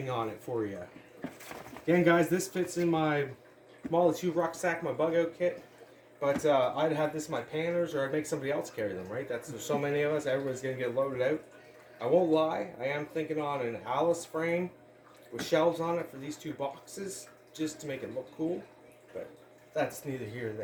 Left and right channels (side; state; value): both; identical; correlation 1.00